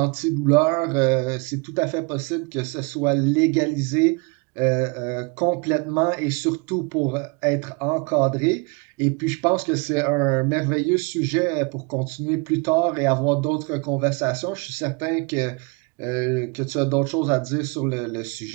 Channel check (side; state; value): left; quieter; 31.2 dB